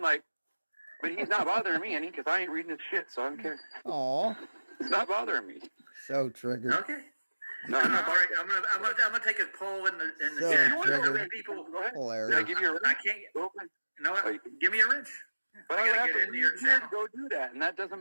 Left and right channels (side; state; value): both; inverted; correlation -1.00